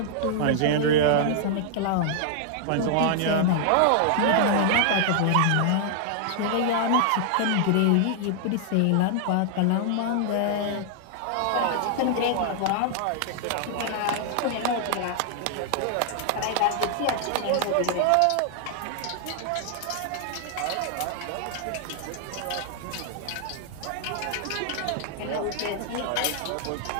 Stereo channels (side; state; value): both; different; correlation 0.00